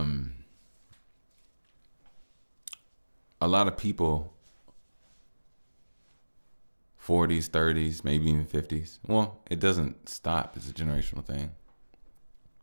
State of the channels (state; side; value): inverted; both; correlation -1.00